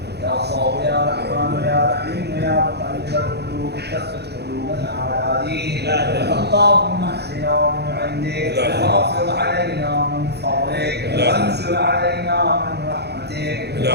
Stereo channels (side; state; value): left; late; 0.48 ms